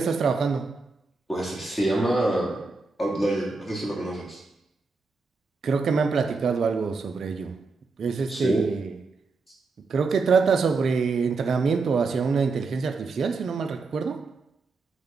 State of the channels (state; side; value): quieter; left; 4.1 dB